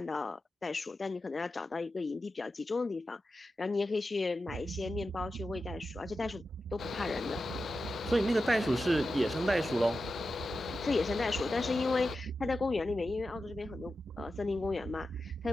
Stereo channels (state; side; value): normal; both; correlation 0.91